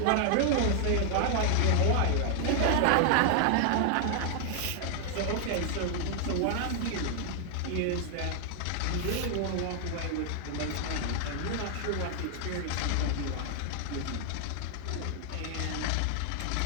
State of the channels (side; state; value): both; different; correlation 0.00